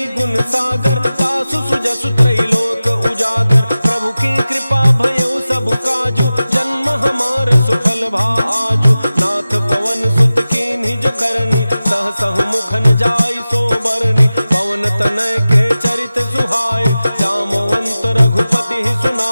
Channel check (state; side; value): inverted; both; correlation -0.95